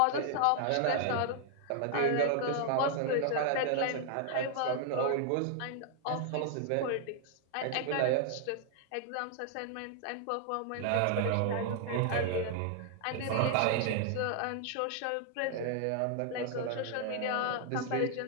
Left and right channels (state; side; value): different; both; correlation 0.00